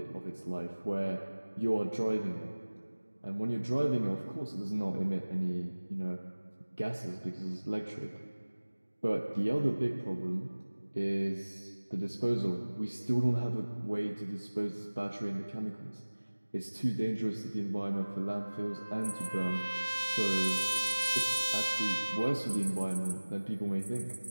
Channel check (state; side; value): inverted; both; correlation -1.00